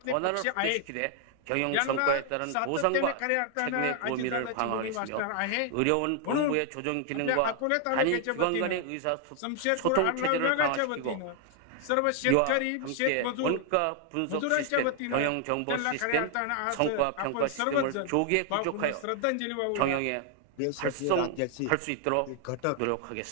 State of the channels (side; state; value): both; different; correlation 0.00